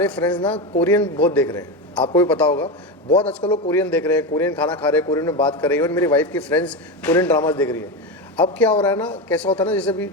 फ्रेंड्स ना कोरियन बहुत देख रहे हैं। आपको भी पता होगा, बहुत आजकल लोग कोरियन देख रहे हैं, कोरियन खाना खा रहे हैं, कोरियन में बात कर रहे हैं। और मेरी वाइफ की फ्रेंड्स कोरियन ड्रामाज देख रही है। अब क्या हो रहा है ना, कैसा होता है ना,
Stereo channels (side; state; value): both; normal; correlation 0.17